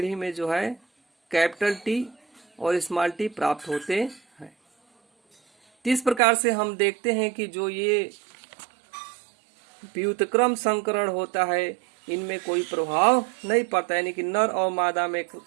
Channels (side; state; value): left; drops out; at 6.2 s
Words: में जो है कैपिटल टी और स्मॉल टी प्राप्त होते हैं। इस प्रकार से हम देखते हैं कि जो ये व्युत्क्रम संकरण होता है इनमें कोई प्रभाव नहीं पड़ता, यानी कि नर और मादा में